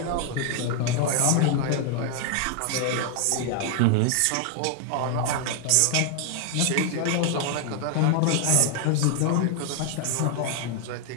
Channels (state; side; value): different; both; correlation 0.00